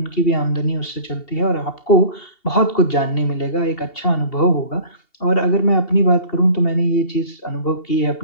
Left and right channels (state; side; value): late; right; 2.7 ms